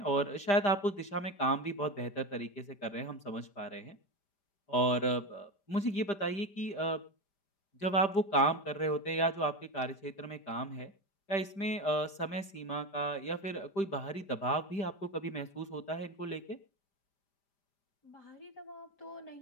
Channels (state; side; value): late; right; 5.0 ms